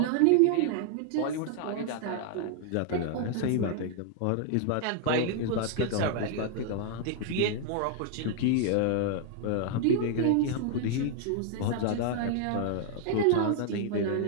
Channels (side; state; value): both; different; correlation 0.00